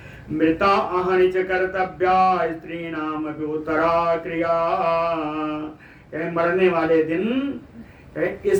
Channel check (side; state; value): both; identical; correlation 1.00